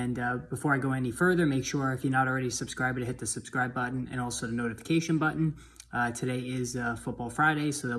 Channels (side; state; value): both; identical; correlation 1.00